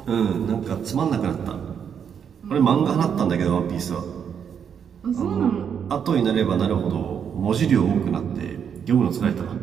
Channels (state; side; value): quieter; left; 7.7 dB